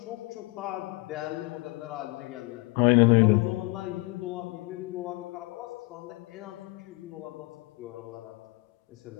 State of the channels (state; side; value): quieter; right; 23.3 dB